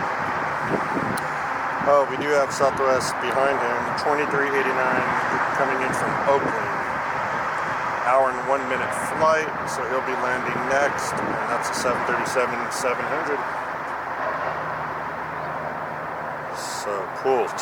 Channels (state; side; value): identical; both; correlation 1.00